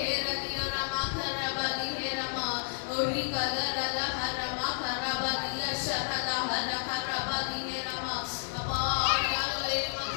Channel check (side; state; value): right; silent; digital silence